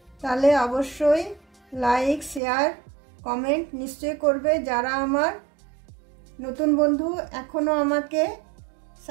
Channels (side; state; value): left; drops out; at 2.4 s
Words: তাহলে অবশ্যই লাইক, শেয়ার, কমেন্ট নিশ্চয়ই করবে। যারা আমার নতুন বন্ধু এখনো আমাকে